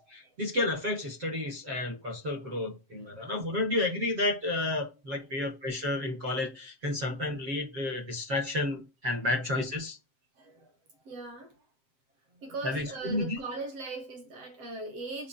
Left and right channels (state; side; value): late; left; 7.6 ms